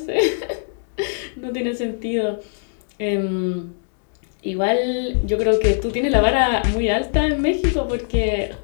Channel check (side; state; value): right; silent; digital silence